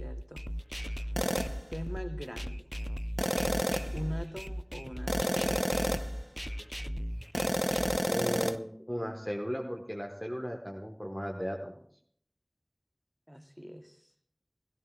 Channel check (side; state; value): both; identical; correlation 1.00